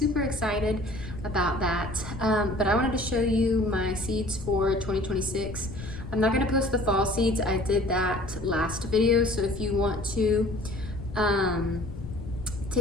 excited about that. But I wanted to show you my seeds for 2026. I'm not gonna post the fall seeds. I did that last video. So if you want to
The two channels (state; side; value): noise; left; rumble, 12 dB below the sound